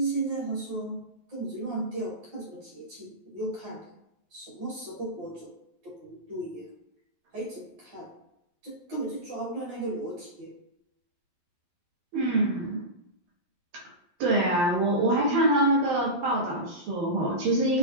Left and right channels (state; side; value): late; left; 11 ms